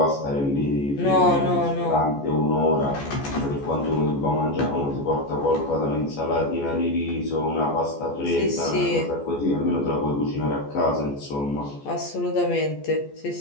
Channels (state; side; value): late; right; 14 ms